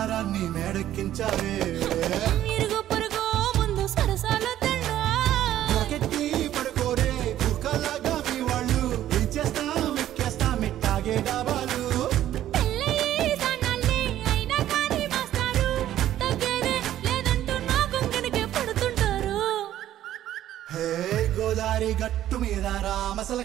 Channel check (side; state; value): left; quieter; 12.4 dB